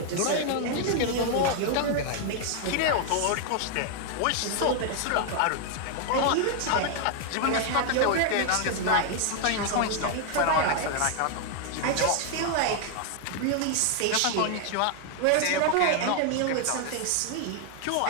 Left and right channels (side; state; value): both; different; correlation 0.00